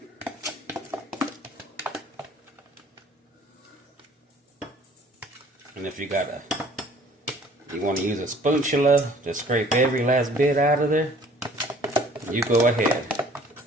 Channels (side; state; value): both; normal; correlation 0.54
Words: And if you want to use a spatula to scrape every last bit out of there, you go ahead.